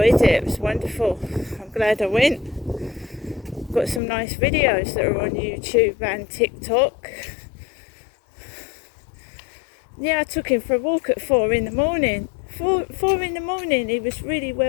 it. It was wonderful. I'm glad I went. Got some nice videos that are on YouTube and TikTok. Yeah, I took him for a walk at 4 in the morning. 4 in the morning, he was really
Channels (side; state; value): right; drops out; at 4.0 s